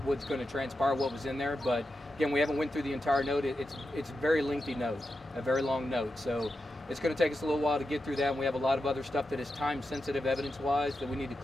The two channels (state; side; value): normal; both; correlation 0.89